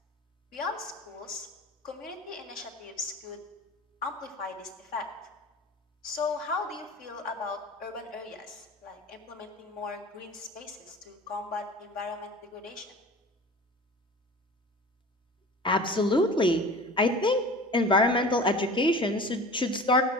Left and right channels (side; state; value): both; normal; correlation 0.39